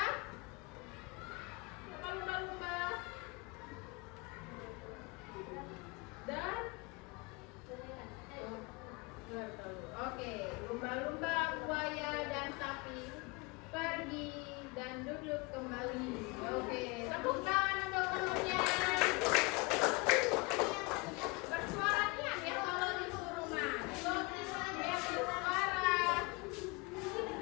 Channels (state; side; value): quieter; right; 27.6 dB